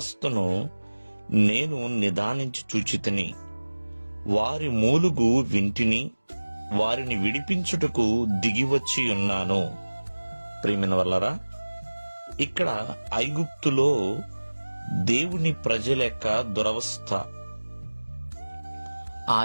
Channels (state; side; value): inverted; both; correlation -1.00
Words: నేను నిదానించి చూచితిని, వారి మూలుగు వింటిని, వారిని విడిపించుటకు దిగివచ్చి ఉన్నాను. ప్రియమైన వల్లరా, ఇక్కడ ఐగుప్తులో దేవుని ప్రజల యొక్క దురవస్థ, ఆ